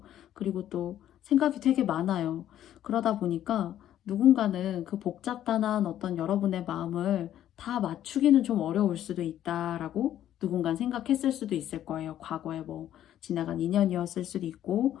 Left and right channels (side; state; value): right; quieter; 11.6 dB